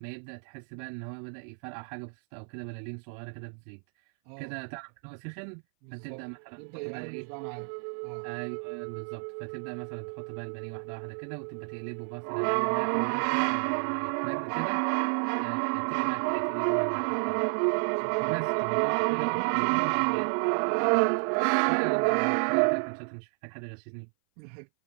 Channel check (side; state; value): left; silent; 57 dB below the other